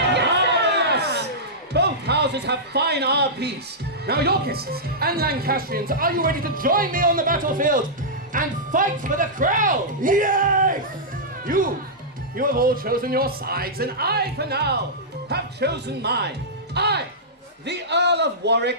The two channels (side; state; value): both; normal; correlation -0.13